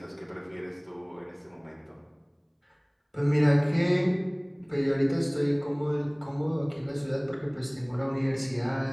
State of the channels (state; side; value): identical; both; correlation 1.00